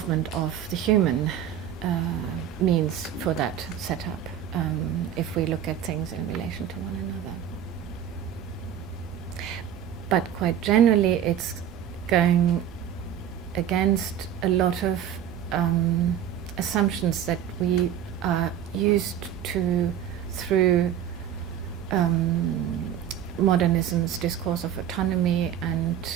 of the human means for that setup, if we look at things in relation to one another. But quite generally, it's going against a lot of assumptions that we are used to through modernism's discourse of autonomy and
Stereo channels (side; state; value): left; quieter; 9.8 dB